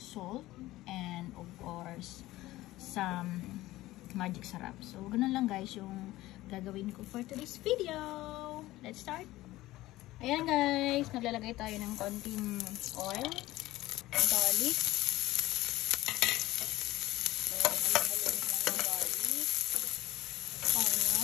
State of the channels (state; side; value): quieter; right; 17.1 dB